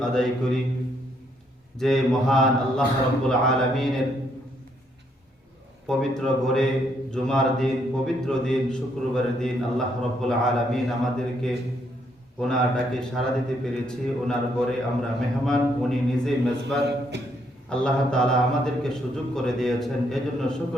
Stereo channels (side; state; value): both; normal; correlation 0.72